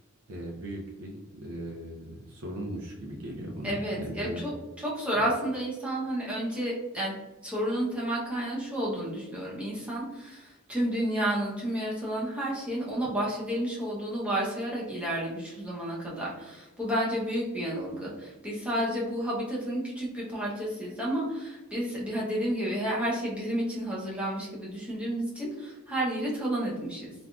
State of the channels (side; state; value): both; normal; correlation 0.52